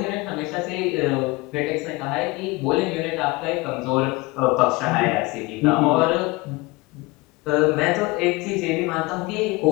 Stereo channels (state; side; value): quieter; right; 23.2 dB